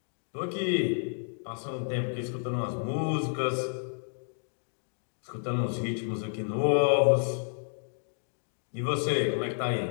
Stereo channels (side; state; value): right; silent; 57 dB below the other